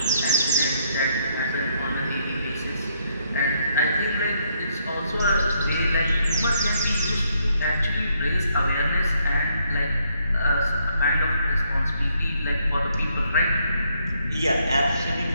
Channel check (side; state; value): both; inverted; correlation -0.72